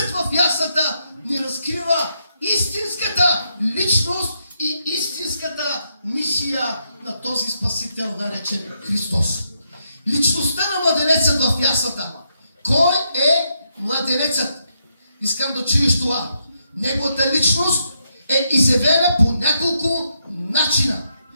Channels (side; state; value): both; inverted; correlation -0.80